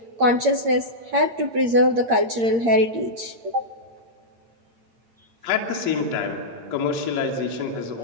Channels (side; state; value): left; late; 8.7 ms